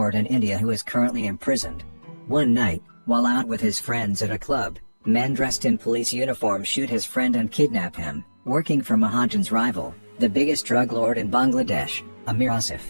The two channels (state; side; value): inverted; both; correlation -1.00